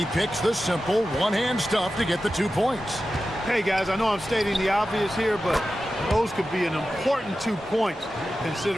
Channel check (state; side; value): normal; both; correlation 0.93